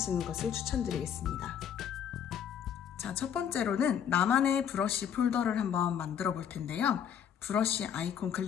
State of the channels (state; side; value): quieter; right; 8.6 dB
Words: 것을 추천드리겠습니다. 자, 첫 번째로는 나만의 브러쉬 폴더를 한번 만들어 볼 텐데요. 브러쉬 아이콘